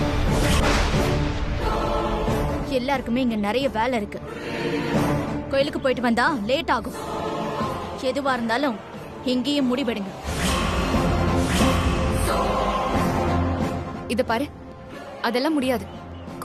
எல்லாருக்குமே இங்க நிறைய வேலை இருக்கு. கோயிலுக்கு போயிட்டு வந்தா லேட் ஆகும். எதுவா இருந்தாலும் இங்கேயும் முடிவெடுங்க. இத பாரு, அதெல்லாம் முடியாது.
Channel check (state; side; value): identical; both; correlation 1.00